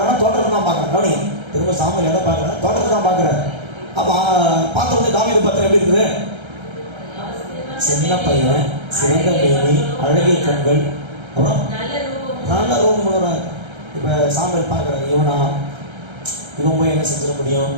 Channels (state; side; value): late; left; 1.3 ms